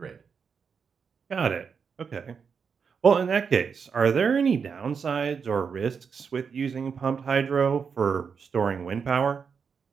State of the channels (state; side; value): quieter; left; 6.1 dB